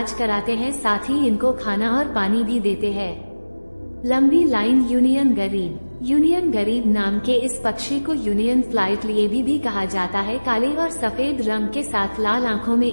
कराते हैं, साथ ही इनको खाना और पानी भी देते हैं। लंबी लाइन यूनियन गरीब नाम के इस पक्षी को यूनियन फ्लाइट लिए भी कहा जाता है। काले और सफेद रंग के साथ लाल आंखों में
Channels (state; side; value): inverted; both; correlation -1.00